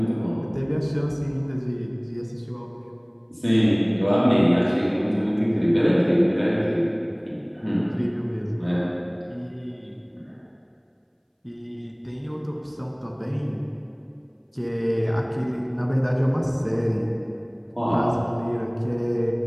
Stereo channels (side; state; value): both; identical; correlation 1.00